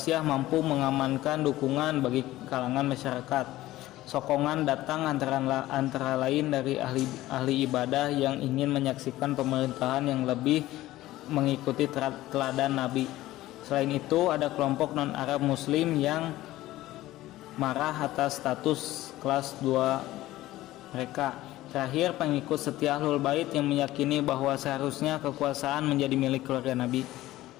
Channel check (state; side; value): quieter; right; 16.1 dB